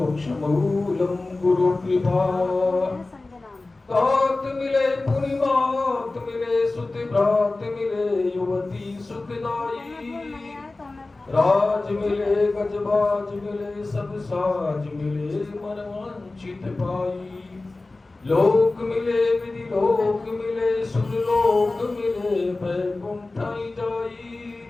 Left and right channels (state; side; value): quieter; right; 3.2 dB